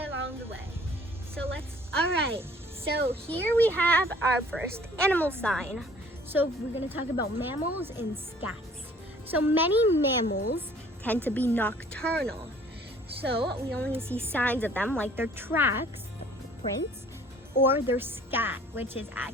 the way. Alright, so here we have our first animal sign. So we're going to talk about mammals and scats. So many mammals tend to be nocturnal. So we only see signs of them like their tracks, prints, or their scat, which is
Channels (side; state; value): both; normal; correlation 0.54